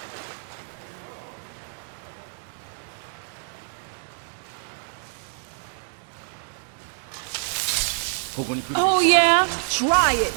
Oh, yeah? Try it,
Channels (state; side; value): silent; left; 61 dB below the other